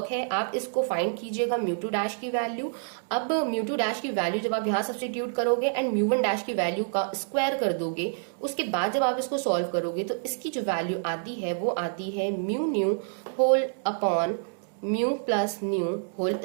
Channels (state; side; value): silent; left; digital silence